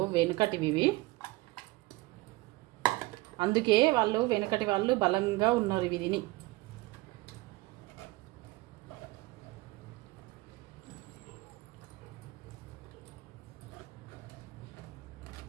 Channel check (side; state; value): left; quieter; 21.2 dB